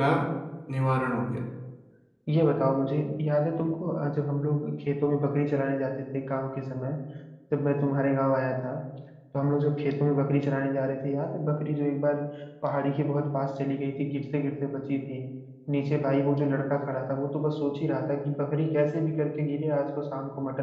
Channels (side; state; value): both; identical; correlation 1.00